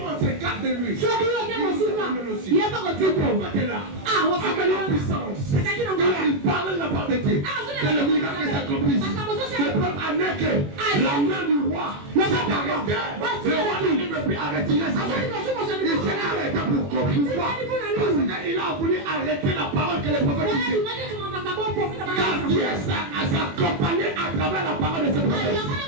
s'écarte de lui, il sera avec nous aussi. Le prophète est là. Avec la puissance. Il parle la part de Dieu. Que le miracle s'accomplisse. Le peuple a nequé. La main du roi s'est arrêtée. Le roi ne peut plus arrêter sa main. Il s'est arrêté pour pourquoi? Parce qu'il a voulu arrêter la parole que le prophète disait. Car Dieu s'accompagné à travers la parole de ce prophète.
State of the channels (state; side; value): late; left; 21 ms